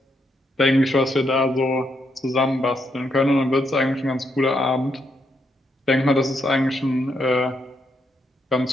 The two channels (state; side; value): normal; both; correlation 0.78